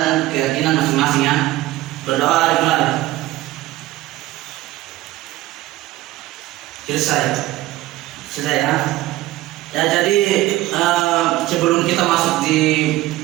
keyakinan masing-masing ya. Berdoa dimulai. Selesai ya. Ya, jadi sebelum kita masuk di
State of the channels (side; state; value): left; quieter; 16.9 dB